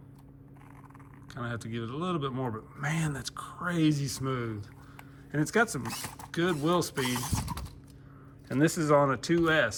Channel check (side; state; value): both; identical; correlation 1.00